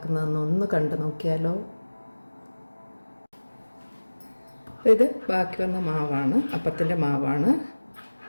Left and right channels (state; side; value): inverted; both; correlation -1.00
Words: ഒന്ന് കണ്ടു നോക്കിയാലോ. ഇത് ബാക്കി വന്ന മാവാണ്, അപ്പത്തിൻ്റെ മാവാണ്.